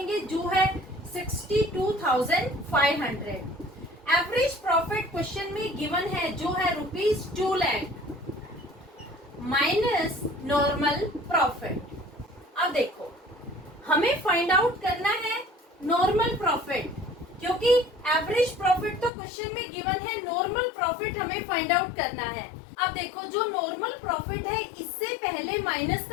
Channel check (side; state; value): right; drops out; at 19.1 s